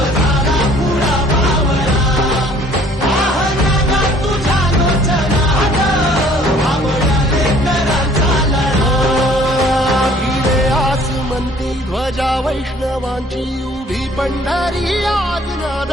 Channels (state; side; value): normal; both; correlation 0.56